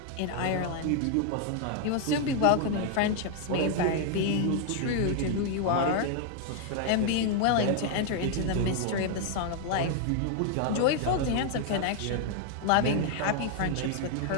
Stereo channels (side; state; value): both; different; correlation 0.00